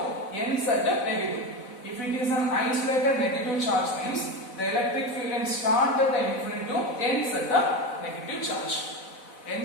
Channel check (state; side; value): late; right; 4.0 ms